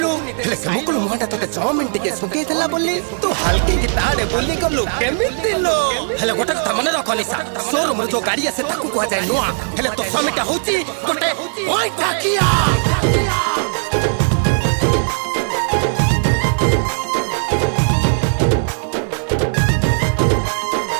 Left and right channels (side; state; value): left; silent; digital silence